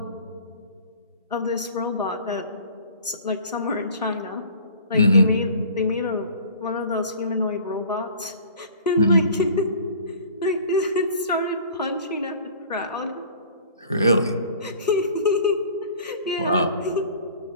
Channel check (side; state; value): both; inverted; correlation -0.47